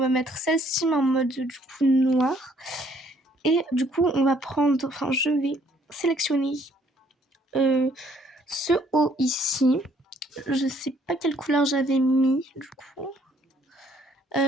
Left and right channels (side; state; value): both; normal; correlation 0.64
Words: mettre celle-ci mais en mode du coup noir. Et du coup on va prendre, enfin je vais sélectionner ce haut ici. Je sais pas quelle couleur j'avais mis du coup.